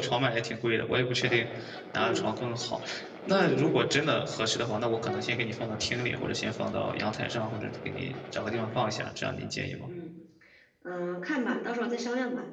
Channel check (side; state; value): both; identical; correlation 1.00